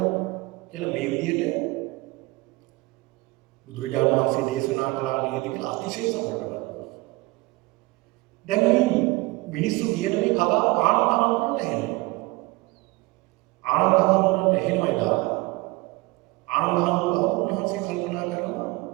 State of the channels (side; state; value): left; quieter; 23.1 dB